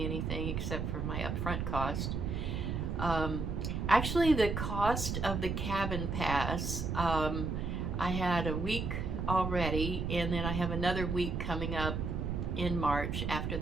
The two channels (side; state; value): right; noise; rumble, 2 dB below the sound